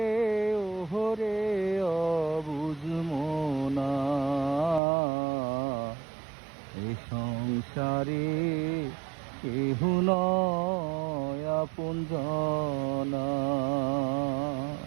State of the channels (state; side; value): drops out; left; at 4.8 s